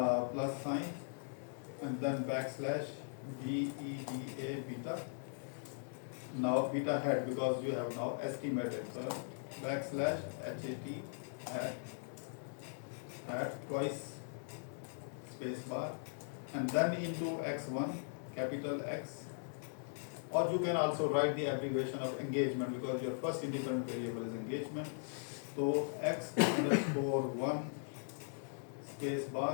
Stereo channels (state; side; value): silent; right; digital silence